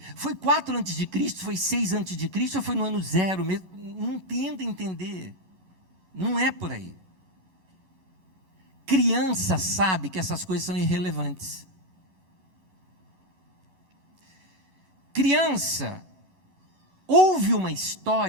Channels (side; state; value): left; late; 11 ms